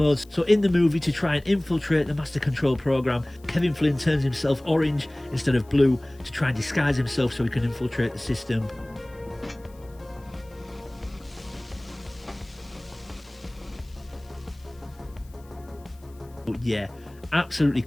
So in the movie, to try and infiltrate the Master Control program, Kevin Flynn turns himself orange instead of blue to try and disguise himself so he can infiltrate the system. But yeah, absolutely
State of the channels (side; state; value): left; noise; hiss, 29 dB below the sound